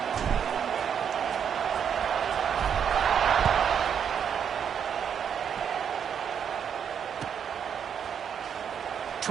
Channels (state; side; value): quieter; left; 7.9 dB